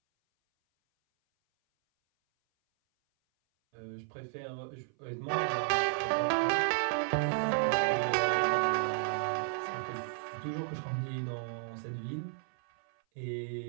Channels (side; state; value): left; silent; 56 dB below the other